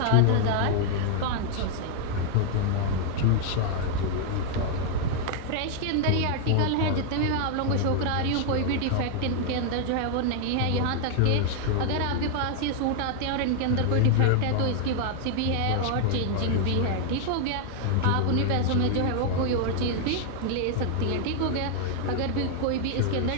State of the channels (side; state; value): both; different; correlation 0.00